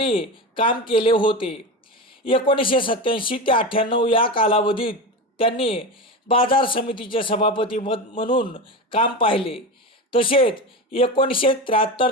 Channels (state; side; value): normal; both; correlation 0.22